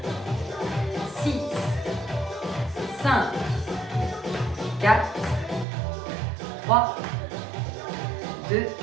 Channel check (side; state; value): left; drops out; at 5.7 s